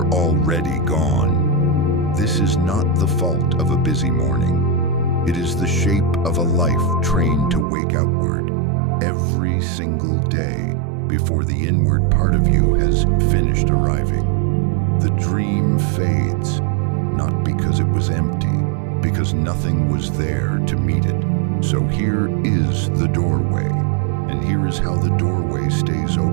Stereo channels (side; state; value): left; drops out; at 7.7 s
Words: already gone. This is not the fault of a busy morning. It is the shape of a life trained to wake outward every single day before the inward part of you has finished arriving. The dream fades, not because it was empty, because nothing was there to meet it. So here is the doorway, and here is how the doorway stays